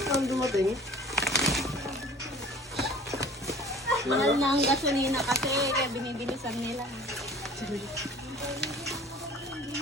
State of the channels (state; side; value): normal; both; correlation 0.46